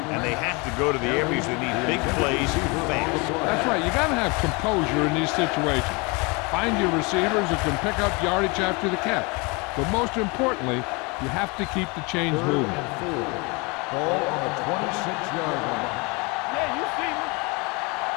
And they have to go to the areas that need big plays fast. That's right. You got to have composure in these situations. Find your receivers who can pick up yardage after the catch. But most importantly, you have to keep the chains moving. Ball on the 26-yard line. Yeah, you see me.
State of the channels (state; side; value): quieter; right; 28.6 dB